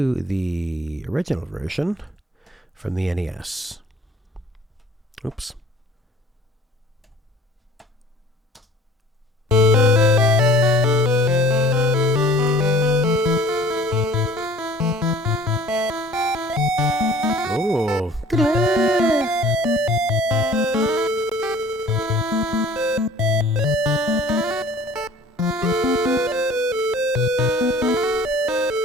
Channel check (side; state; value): both; normal; correlation 0.49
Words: the original version from the NES. Oops. Oh.